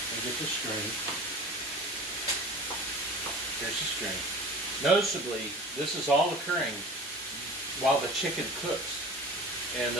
and get the string. Here's the string. Noticeably, this is all occurring while the chicken cooks. And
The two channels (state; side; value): normal; both; correlation 0.39